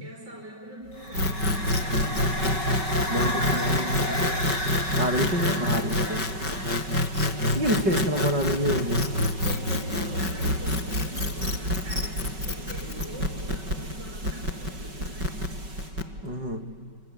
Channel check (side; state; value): left; late; 5.3 ms